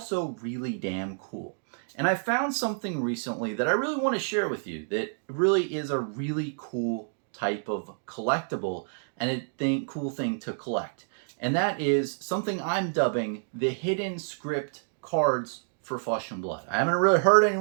really damn cool? And I found something recently that I really want to share with you that really is a really cool type of collectible and cool thing to collect. And that is something I'm dubbing the hidden script cards for Flesh and Blood. I haven't really heard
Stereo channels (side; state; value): left; silent; digital silence